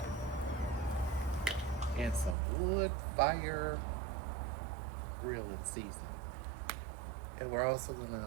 And some wood fire grilling seasoning. And we're also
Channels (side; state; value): left; drops out; at 2.4 s